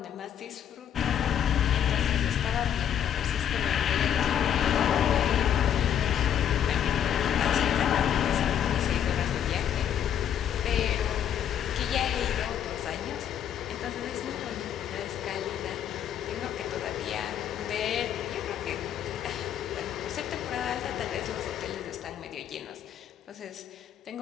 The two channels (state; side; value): quieter; right; 9.5 dB